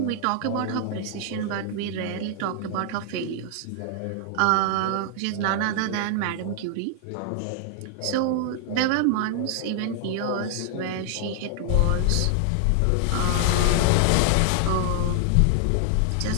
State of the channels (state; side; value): different; both; correlation 0.00